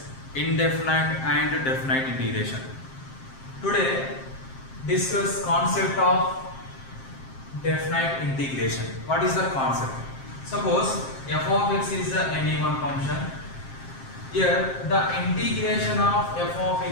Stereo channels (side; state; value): right; late; 7.5 ms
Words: indefinite and definite integration. Today discuss concept of definite integration. What is the concept? Suppose f of x is any one function. Here the integration of f of